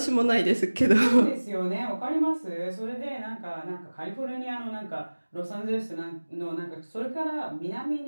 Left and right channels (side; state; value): both; inverted; correlation -1.00